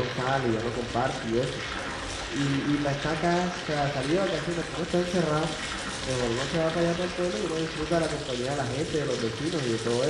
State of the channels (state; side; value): identical; both; correlation 1.00